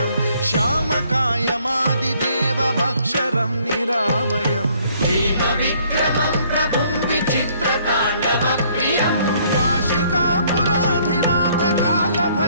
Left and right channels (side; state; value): both; inverted; correlation -0.63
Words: श्यामकायमादिदेवमक्षरं निरामयं हेमविक्रमं प्रभुं विचित्रताण्डवप्रियं काशिकापुराधिनाथ